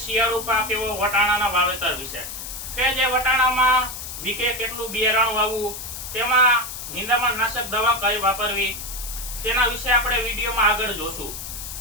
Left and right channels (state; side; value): noise; left; hiss, 9 dB below the sound